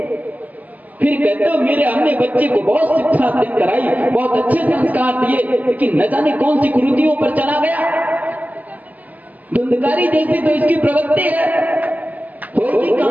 फिर कहते हो मेरे हमने बच्चे को बहुत शिक्षा कराई, बहुत अच्छे संस्कार दिए, लेकिन न जाने कौन सी कुरीतियों पर चला गया। धुंधकारी जैसी तो इसकी प्रवृत्ति है, होगी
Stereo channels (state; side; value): late; left; 0.078 ms